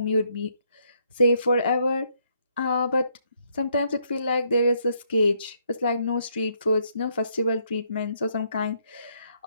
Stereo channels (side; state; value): both; inverted; correlation -0.72